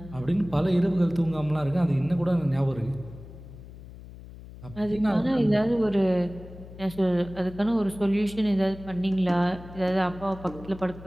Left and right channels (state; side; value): noise; left; hum, 16 dB below the sound